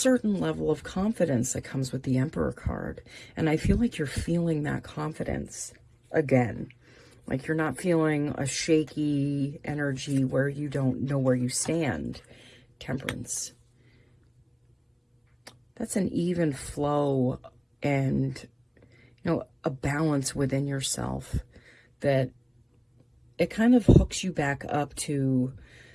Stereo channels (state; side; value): identical; both; correlation 1.00